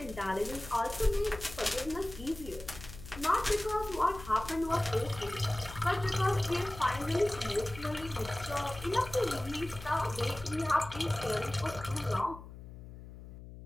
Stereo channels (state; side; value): noise; left; hum, 14 dB below the sound